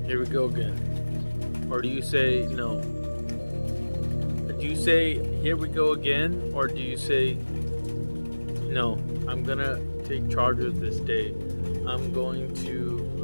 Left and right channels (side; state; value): both; inverted; correlation -1.00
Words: "Here we go again," or do you say no? Do you say, "Here we go again," or do you say, "No, I'm gonna take charge of this day. I'm